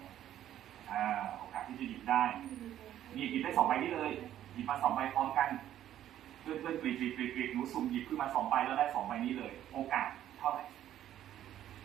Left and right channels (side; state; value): left; quieter; 11.7 dB